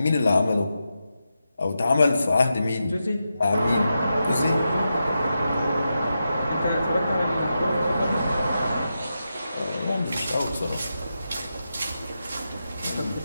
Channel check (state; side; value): inverted; both; correlation -0.88